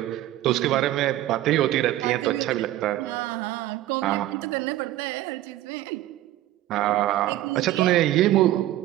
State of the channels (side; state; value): left; quieter; 14.5 dB